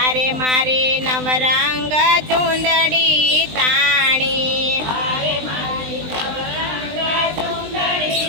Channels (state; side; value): late; left; 20 ms